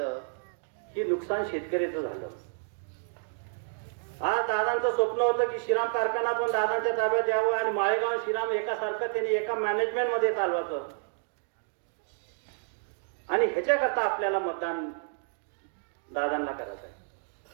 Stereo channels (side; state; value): left; silent; digital silence